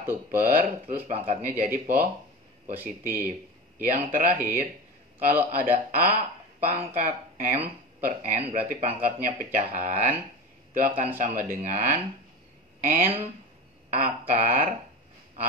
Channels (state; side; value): normal; both; correlation 0.29